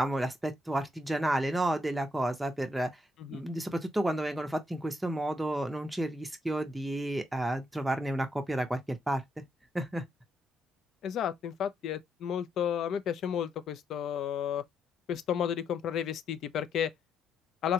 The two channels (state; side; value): normal; both; correlation 0.78